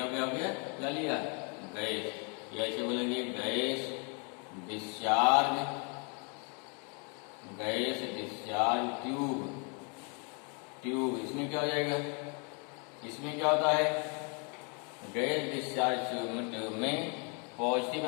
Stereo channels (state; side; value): quieter; right; 35.8 dB